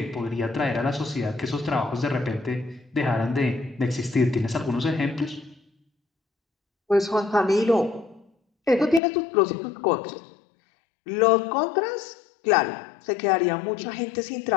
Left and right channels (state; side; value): drops out; right; at 9.0 s